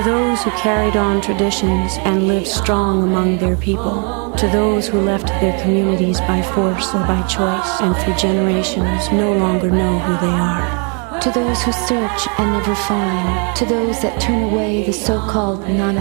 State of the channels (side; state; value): left; quieter; 37.7 dB